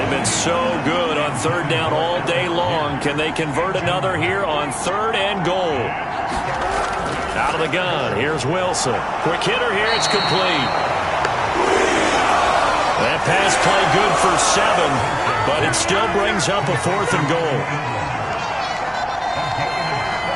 been so good on 3rd down all day long. Can they convert another here on 3rd and goal? Out of the gun, here's Wilson. Quick hitter here, it's complete. That pass play good for 7, but it still brings up a 4th and goal.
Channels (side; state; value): both; identical; correlation 1.00